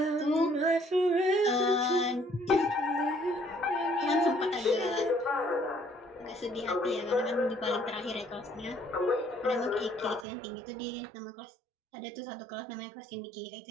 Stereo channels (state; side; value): drops out; left; at 10.2 s